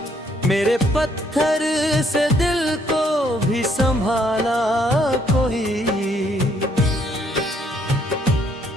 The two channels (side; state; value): both; normal; correlation 0.68